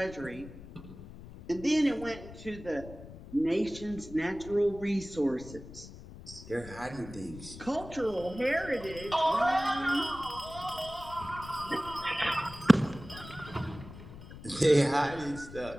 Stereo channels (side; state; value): left; noise; rumble, 15 dB below the sound